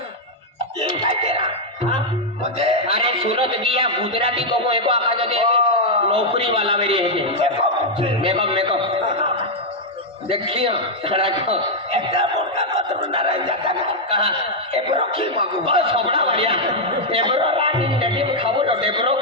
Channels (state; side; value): normal; both; correlation -0.02